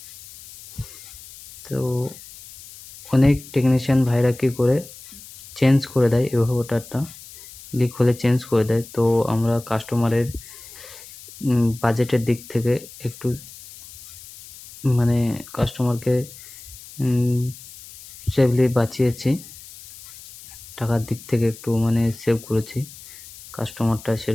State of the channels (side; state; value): left; noise; hiss, 18 dB below the sound